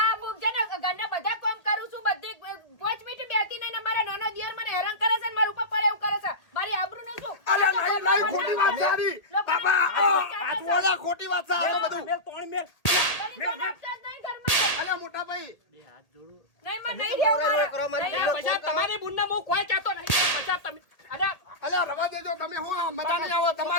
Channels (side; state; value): right; late; 1.8 ms